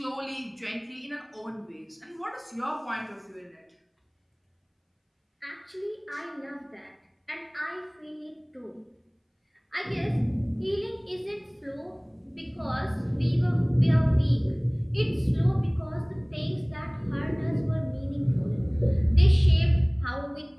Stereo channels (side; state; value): both; identical; correlation 1.00